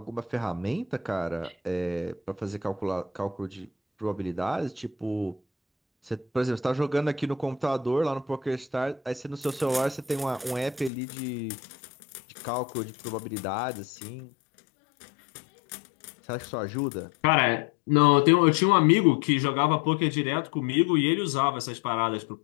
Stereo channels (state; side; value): drops out; right; at 10.9 s